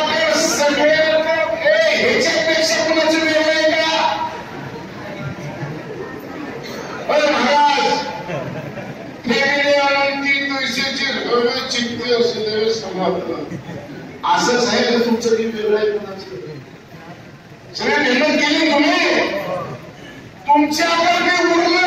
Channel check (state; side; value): identical; both; correlation 1.00